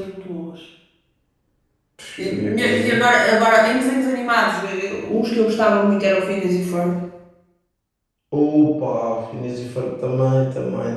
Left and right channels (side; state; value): both; identical; correlation 1.00